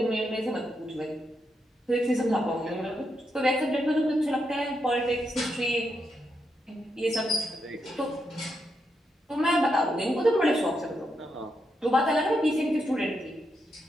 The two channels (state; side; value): normal; both; correlation 0.83